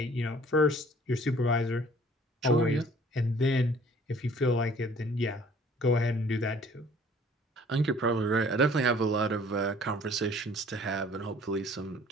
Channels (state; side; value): normal; both; correlation 0.54